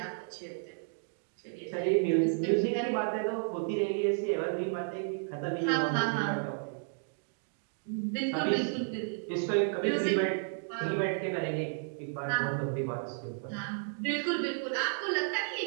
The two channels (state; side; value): silent; left; digital silence